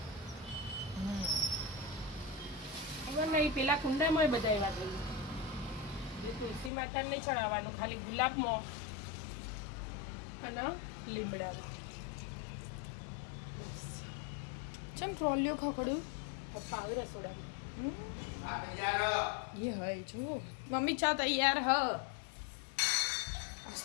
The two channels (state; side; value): drops out; right; at 6.7 s